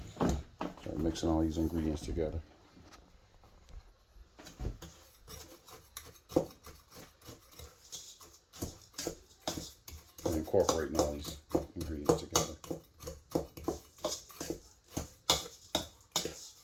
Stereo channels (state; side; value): identical; both; correlation 1.00